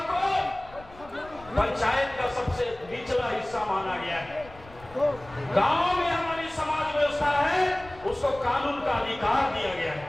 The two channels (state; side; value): noise; left; rumble, 21 dB below the sound